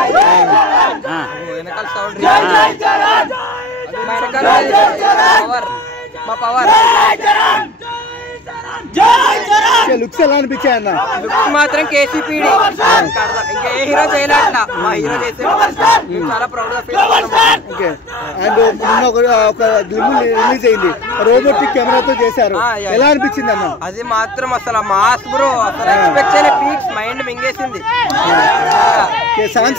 వెనకాల సౌండ్ పవర్ మా పవర్ లుక్స్ ఎలా అనిపించాయి అన్న? లుక్స్ మాత్రం కేసీపీడి ఇంకా ఏ హీరో చేయలేట్లా మా హీరో చేసే చాలా ప్రౌడ్ గా ఫీల్ అవుతున్నాం. ఓకే. అండ్ నిన్న ఒక గ్లిమ్ రిలీజ్ అయింది, రోబోటిక్ కెమెరాతో చేశారు, ఎలా అనిపించింది అన్న? అది మాత్రం అసలు మాస్ బ్రో, అసలు ఎక్స్పెక్ట్ చేయలే, పీక్స్ మైండ్ మింగేసింది.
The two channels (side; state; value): both; normal; correlation 0.41